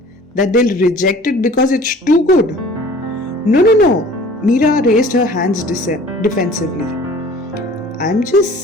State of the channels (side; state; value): both; normal; correlation 0.47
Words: That they'll reject it because it's too good? No. Meera raised her hands defensively. I'm just